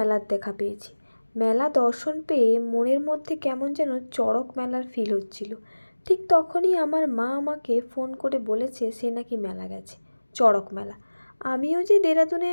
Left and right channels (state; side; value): inverted; both; correlation -1.00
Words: দেখা পেয়েছি। মেলা দর্শন পেয়ে মনের মধ্যে কেমন যেন চড়ক মেলার ফিল হচ্ছিল। ঠিক তখনই আমার মা আমাকে ফোন করে বলেছে সে নাকি মেলা গেছে, চড়ক মেলা। আমিও যে দেরাদুনে